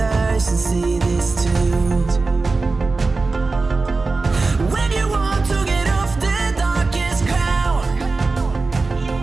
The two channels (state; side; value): quieter; left; 3.8 dB